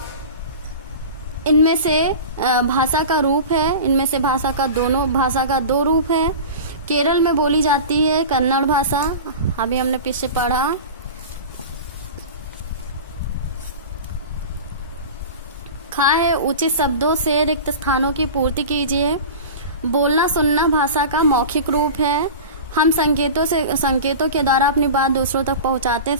इनमें से भाषा का रूप है, इनमें से भाषा का 2 रूप है। केरल में बोली जाती है कन्नड़ भाषा, अभी हमने पीछे पढ़ा। खा है उचित शब्दों से रिक्त स्थानों की पूर्ति कीजिए। बोलना सुनना भाषा का मौखिक रूप है। हम संकेतों के द्वारा अपनी बात दूसरों तक पहुंचाते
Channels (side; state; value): both; inverted; correlation -0.32